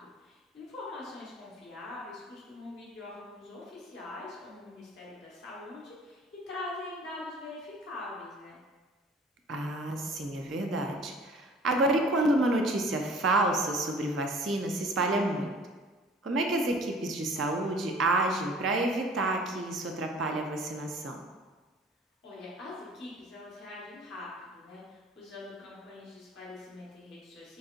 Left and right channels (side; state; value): both; normal; correlation 0.50